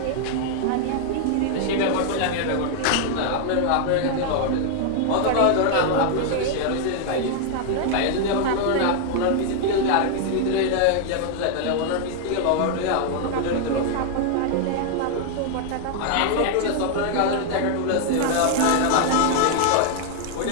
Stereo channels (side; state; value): both; different; correlation 0.00